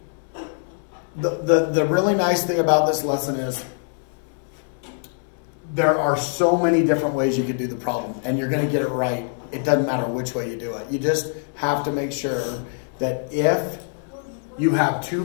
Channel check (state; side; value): silent; right; 63 dB below the other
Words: the really nice thing about this lesson is there are so many different ways you could do the problem, and you're going to get it right. It doesn't matter which way you do it. You just have to make sure that if you have two